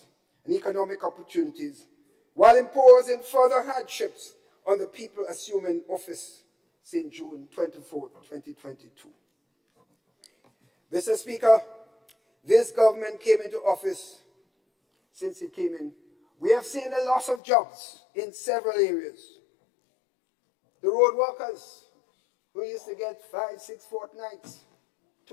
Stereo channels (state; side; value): drops out; right; at 17.4 s